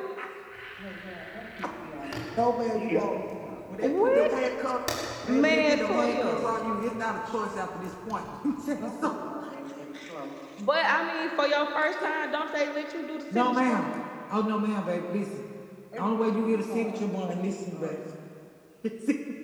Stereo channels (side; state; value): both; identical; correlation 1.00